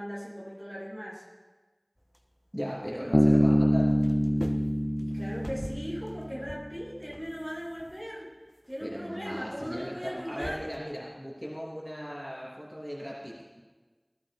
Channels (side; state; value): both; identical; correlation 1.00